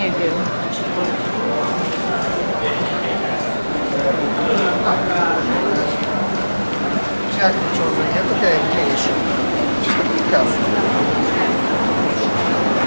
wiem. Jak ciągle, to jest mniejsze. Kasy.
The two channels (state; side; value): inverted; both; correlation -1.00